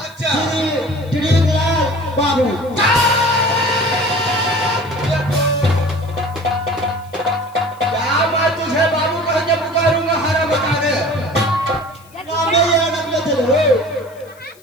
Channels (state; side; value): noise; left; hiss, 27 dB below the sound